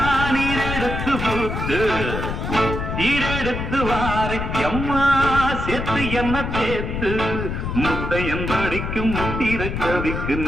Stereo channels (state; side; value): noise; left; rumble, 4 dB below the sound